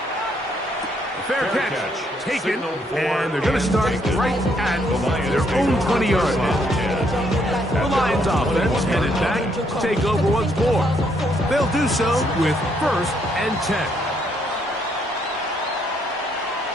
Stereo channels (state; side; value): normal; both; correlation 0.72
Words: Fair catch taken, and they're going to start right at their own 20-yard line. The Lions offense headed back to take over once more. They'll do so with 1st and 10.